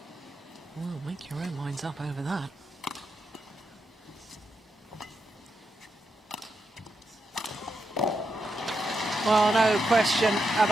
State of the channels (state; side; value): normal; both; correlation 0.85